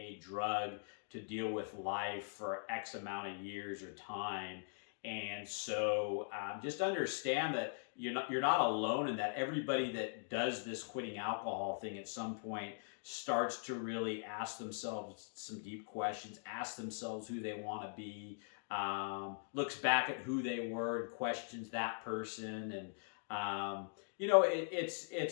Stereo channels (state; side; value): silent; right; digital silence